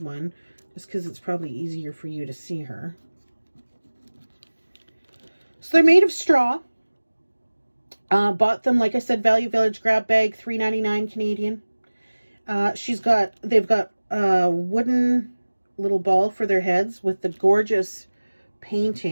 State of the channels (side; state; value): both; inverted; correlation -1.00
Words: one just because it's probably easier for you to see her. So they're made of straw. Bought them, like I said, Value Village grab bag, $3.99 Canadian. They've got a wooden little ball for their heads with the gorgeous